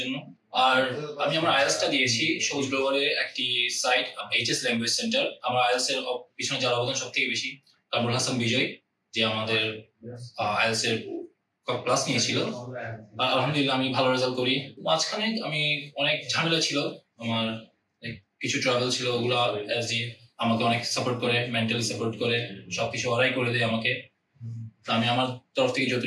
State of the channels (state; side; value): identical; both; correlation 1.00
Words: জন্য। আর আমি আমার আইএলটিএসটা দিয়েছি সবুজ গ্লোবালের একটি সাইট, এইচএস ল্যাঙ্গুয়েজ সেন্টার। আমার আইএলটিএস এর পিছনে যার অবদান সব থেকে বেশি কামরুল হাসান বিজয়, যে আমাদের আইএলটিএস এর ক্লাস নিয়েছিল। আলহামদুলিল্লাহ আমি ভালো রেজাল্ট করি। মাঝখানে আমি অনেক ঝামেলা ছিল, আমার কিছু ট্রাভেল ছিল, ওগুলো এসজি আমাকে অনেক সাপোর্ট করে, মেন্টালি সাপোর্ট করে, সবকিছু ওরাই করে দেয় আমাকে। আমি আমার তরফ থেকে